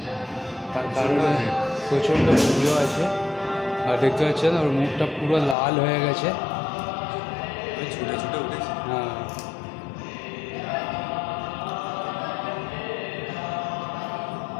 তার কারণে প্রচণ্ড ভিড়ও আছে। আর দেখতে পাচ্ছেন ওর মুখটা পুরো লাল হয়ে গেছে। ছুটে ছুটে উঠেছি। হ্যাঁ,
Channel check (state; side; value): drops out; right; at 5.6 s